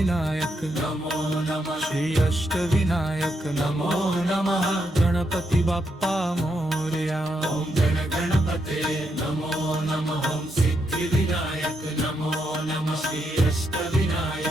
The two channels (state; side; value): normal; both; correlation 0.80